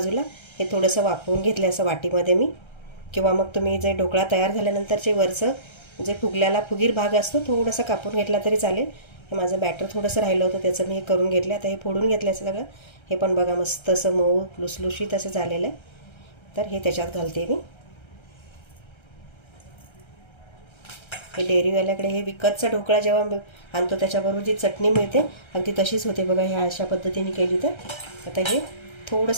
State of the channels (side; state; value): right; late; 1.3 ms